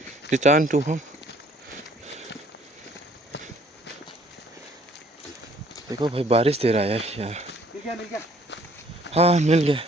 return to home. देखो भाई बारिश दे रहा है यार। हाँ मिल गया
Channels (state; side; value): normal; both; correlation 0.60